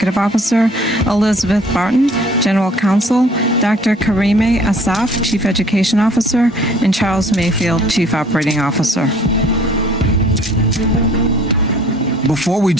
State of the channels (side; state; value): both; normal; correlation 0.55